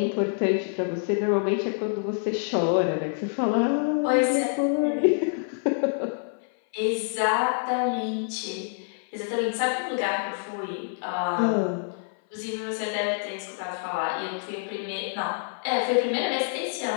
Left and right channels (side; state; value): right; silent; 57 dB below the other